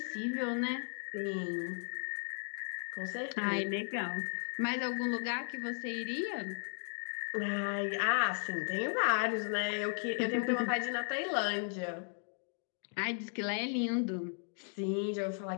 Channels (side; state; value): right; silent; 54 dB below the other